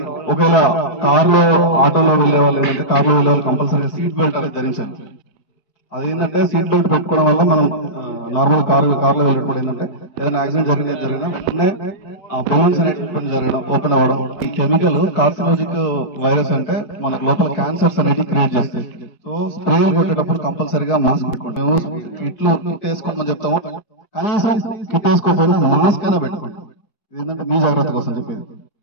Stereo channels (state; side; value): late; right; 5.0 ms